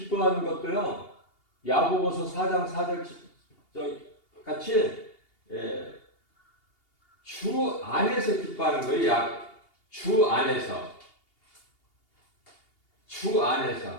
것도요. 야고보서 4장 4절 같이 주 안에서 기뻐하는 거예요. 주 안에서.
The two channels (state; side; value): late; right; 2.8 ms